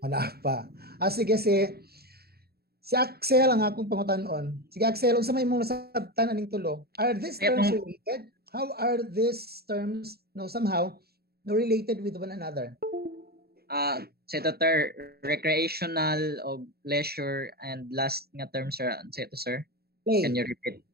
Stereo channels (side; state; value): left; late; 0.46 ms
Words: Wala pa. Sige. Si Axel ang akong pangutan-on. Sige Axel, unsa may imong nasabtan aning tulo? Are these Kaya terms tong- related? How are these terms somehow related with one another? Sa ito, sir, recreational o leisure and last nga term, sir. Sa ito, sir. Play. Can you repeat?